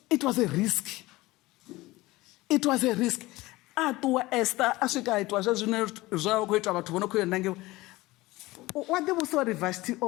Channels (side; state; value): right; quieter; 19.6 dB